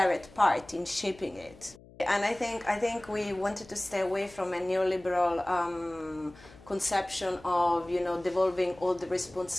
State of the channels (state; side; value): noise; left; hum, 22 dB below the sound